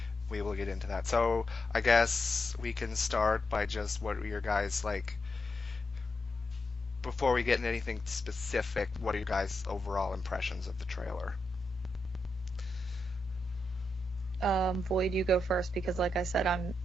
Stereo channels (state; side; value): normal; both; correlation 0.85